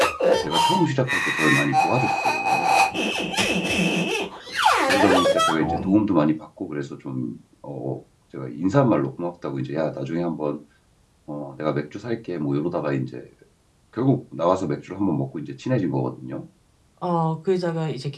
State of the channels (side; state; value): both; identical; correlation 1.00